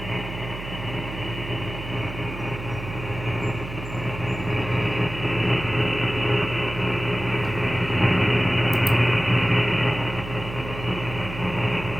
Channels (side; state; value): right; noise; hum, 10 dB below the sound